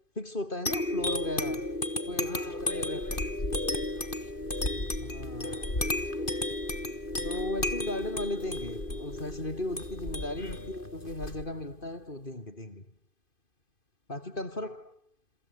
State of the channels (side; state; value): right; late; 2.5 ms